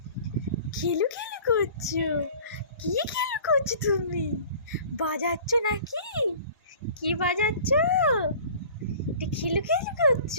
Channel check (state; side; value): inverted; both; correlation -0.46